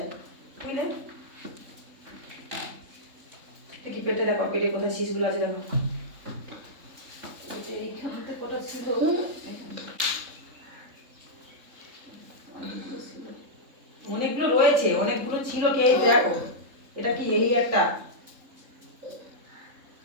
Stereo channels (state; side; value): late; left; 3.7 ms